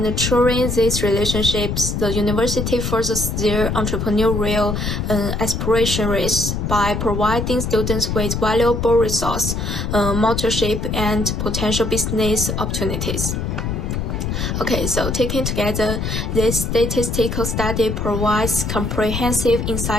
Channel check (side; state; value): left; noise; rumble, 2 dB below the sound